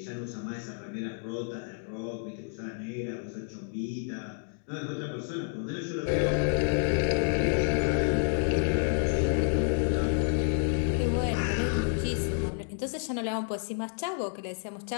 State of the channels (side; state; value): right; silent; digital silence